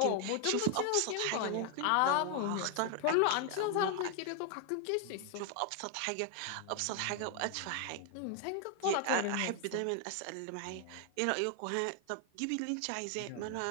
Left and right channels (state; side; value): different; both; correlation 0.00